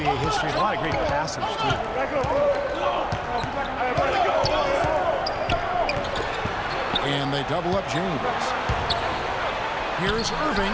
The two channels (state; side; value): identical; both; correlation 1.00